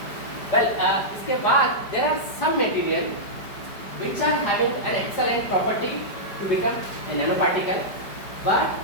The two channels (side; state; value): right; late; 5.0 ms